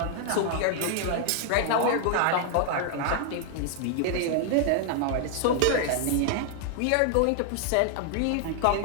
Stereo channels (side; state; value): both; different; correlation 0.00